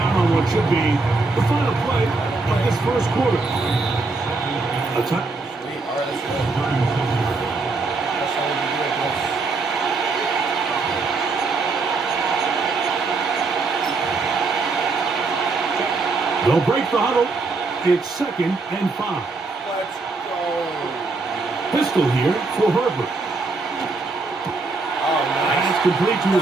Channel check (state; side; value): quieter; left; 3.8 dB